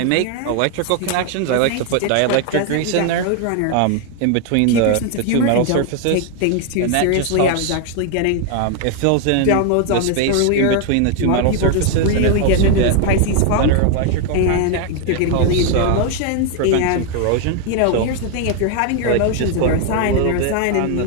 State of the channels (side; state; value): both; different; correlation 0.01